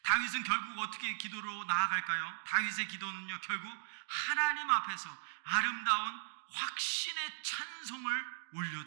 다윗은 결국 어떻게 기도로 나아갈까요? 다윗의 기도는요, 결국 하나님 앞에서 아름다운 확신의 찬송을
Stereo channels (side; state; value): left; silent; digital silence